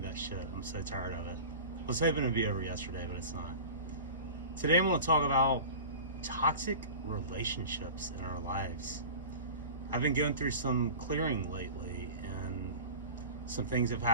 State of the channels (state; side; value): inverted; both; correlation -0.35